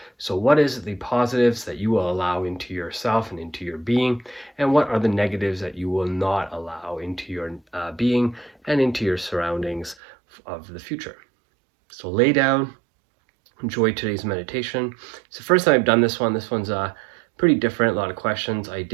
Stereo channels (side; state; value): left; drops out; at 10.0 s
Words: So what is the positives that you will allow into yourself and into your being? And what are the negatives that you will not allow into your being and into your surroundings of the future? So lay down, enjoy today's meditation. It's the first time I've done this one. This one's pretty different, a lot of questions. I